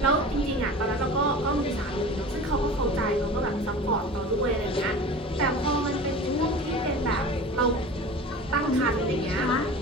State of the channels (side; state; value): both; normal; correlation 0.37